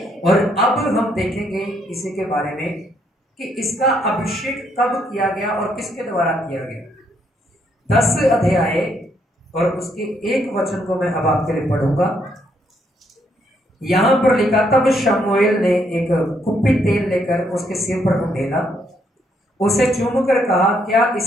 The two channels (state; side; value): normal; both; correlation 0.72